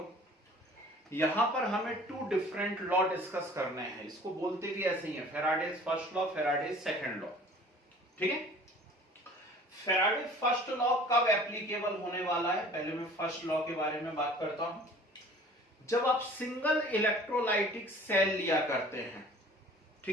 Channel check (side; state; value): both; normal; correlation 0.48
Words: यहां पर हमें 2 डिफरेंट लॉ डिस्कस करने हैं, इसको बोलते भी ऐसे ही है, Faraday's first law, Faraday's second law. ठीक है, फैराडे फर्स्ट लॉ कब एप्लीकेबल होने वाला है, पहले मैं फर्स्ट लॉ के बारे में बात करता हूं। जब आप सिंगल इलेक्ट्रोलाइटिक सेल लिया करते हैं,